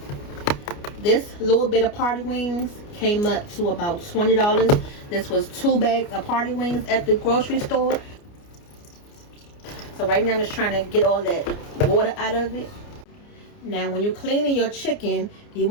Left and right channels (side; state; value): right; late; 29 ms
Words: This little bit of party wings came up to about $20. This was 2 bags of party wings at the grocery store. So right now I'm just trying to get all that water out of it. Now when you're cleaning your chicken, you